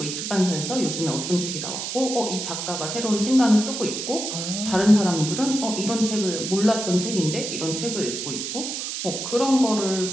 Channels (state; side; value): noise; right; hiss, 5 dB below the sound